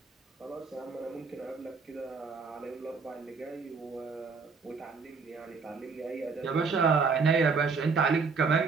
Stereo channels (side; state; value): left; quieter; 4.9 dB